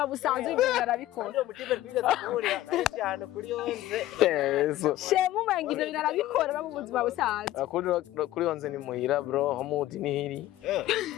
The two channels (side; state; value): right; quieter; 14.8 dB